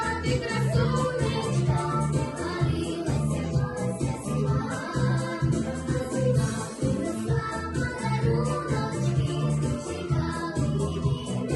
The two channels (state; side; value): identical; both; correlation 1.00